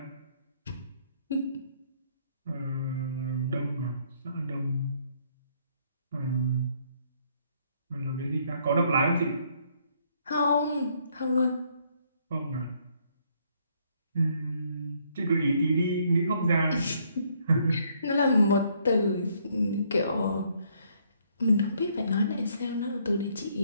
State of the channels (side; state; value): both; inverted; correlation -0.68